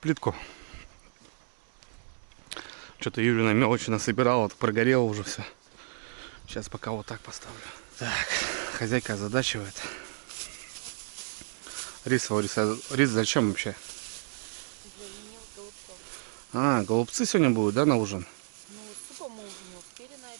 Что-то Юрина мелочи насобирала, вот прогорело уже все. Сейчас пока вот так поставлю. Так, хозяйка озадачивает. Рис зачем вообще? А, голубцы сегодня будут, да, на ужин? Ну, супа мы уже не успели на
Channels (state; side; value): silent; left; digital silence